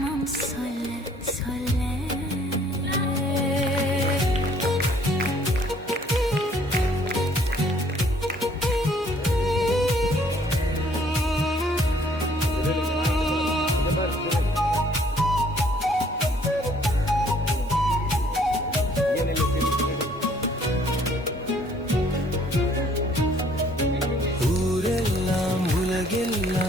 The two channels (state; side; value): normal; both; correlation 0.61